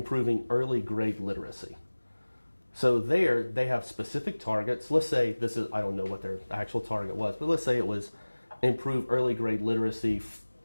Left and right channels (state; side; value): inverted; both; correlation -1.00